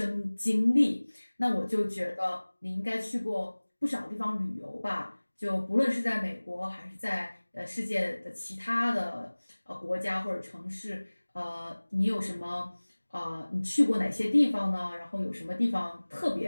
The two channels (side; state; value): both; inverted; correlation -1.00